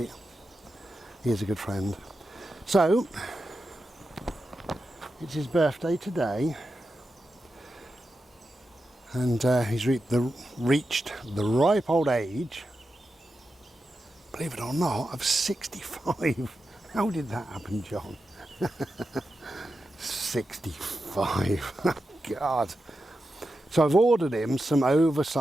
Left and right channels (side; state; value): both; normal; correlation 0.90